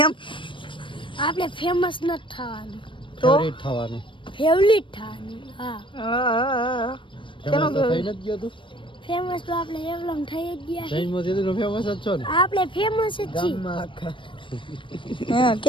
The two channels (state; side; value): late; right; 0.24 ms